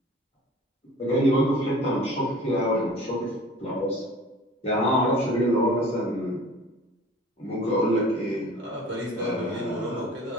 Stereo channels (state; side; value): normal; both; correlation 0.45